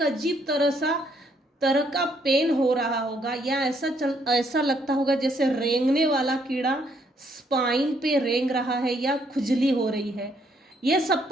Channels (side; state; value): both; normal; correlation 0.70